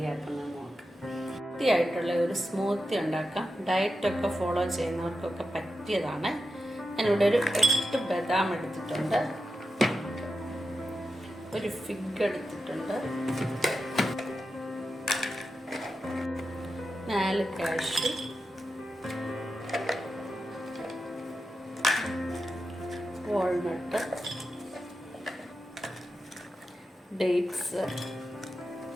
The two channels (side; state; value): both; normal; correlation 0.89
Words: നോക്കാം. ഹെൽത്തിയായിട്ടുള്ള ഒരു സ്മൂത്തി ഉണ്ടാക്കാം. ഡയറ്റൊക്കെ ഫോളോ ചെയ്യുന്നവർക്കൊക്കെ പറ്റിയതാണ്. ഞാനിവിടെ ഒരു 8 ബദാം എടുത്തിട്ടുണ്ട്, ഒരു ഫിഗ് എടുത്തിട്ടുണ്ട്, 4 cashew, walnut, dates,